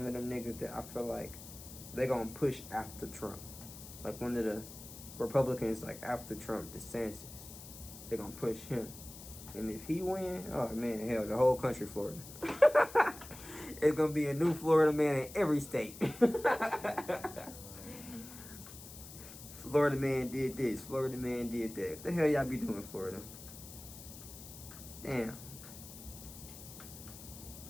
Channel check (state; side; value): noise; left; hiss, 15 dB below the sound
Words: of them niggas that I feel like they gonna push after Trump. Like one of the Republicans, like after Trump, DeSantis. They gonna push him. And if he win, oh man, hell, the whole country Florida. It's gonna be a new Florida man in every state. Florida man did this. Florida man did that. What the hell y'all be doing, Florida? Damn.